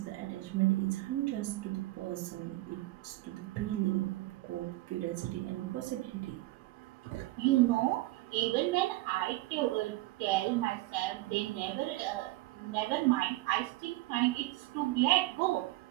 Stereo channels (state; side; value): quieter; left; 18.6 dB